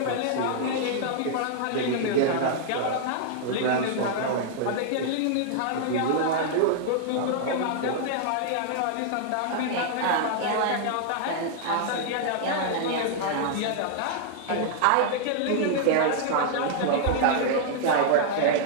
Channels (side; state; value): both; different; correlation -0.01